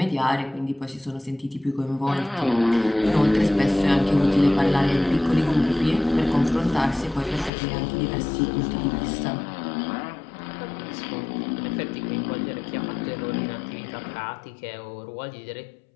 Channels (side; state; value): right; drops out; at 7.5 s